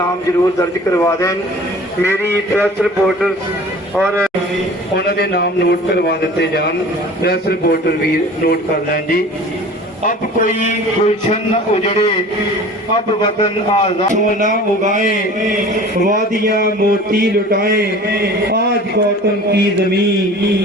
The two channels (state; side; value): normal; both; correlation 0.43